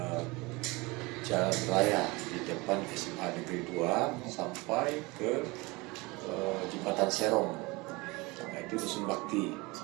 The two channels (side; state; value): left; quieter; 24.3 dB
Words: Jalan Raya di depan SMA Negeri 2 sampai ke Jembatan Serong. Nah, itu Dusun Bakti.